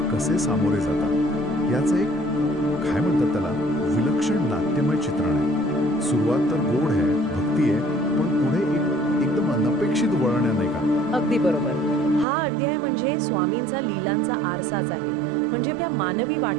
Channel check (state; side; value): drops out; left; at 12.2 s